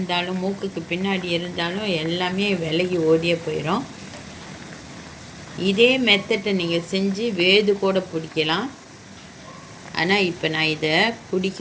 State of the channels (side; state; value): both; identical; correlation 1.00